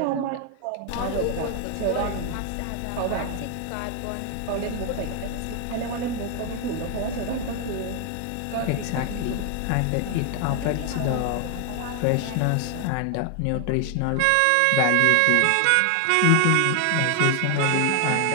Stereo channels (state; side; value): different; both; correlation 0.00